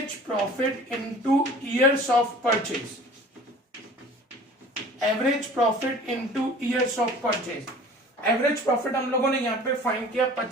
profit into years of purchase. Average profit into years of purchase. Average profit हम लोगों ने यहां पे फाइंड किया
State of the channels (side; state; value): both; normal; correlation 0.45